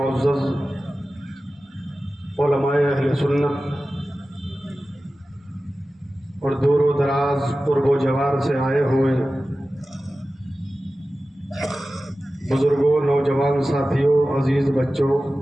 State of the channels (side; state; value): both; normal; correlation 0.95